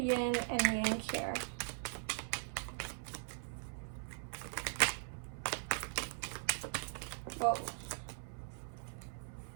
and yang here? Whoa.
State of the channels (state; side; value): silent; left; 51 dB below the other